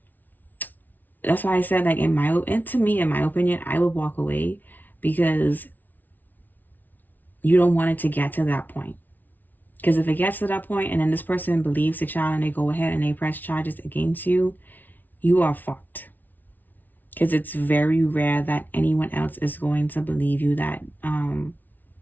that's why I said, like, in my opinion, I would walk away, because you don't want it to get to that point. Because if it gets to that point and then this person believes the child and they go ahead and they press charges against you, you are fucked. Because it's very rare that anyone else is going to believe you that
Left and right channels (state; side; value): late; right; 0.083 ms